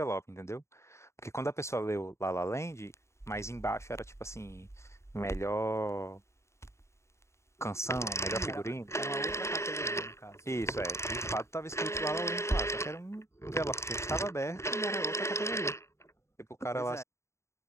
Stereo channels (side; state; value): right; late; 0.14 ms